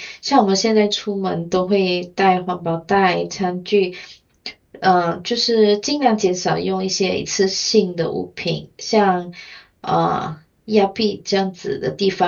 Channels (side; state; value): both; identical; correlation 1.00